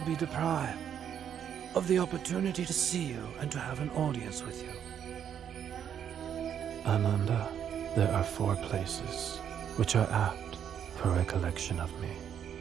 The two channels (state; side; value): quieter; left; 8.9 dB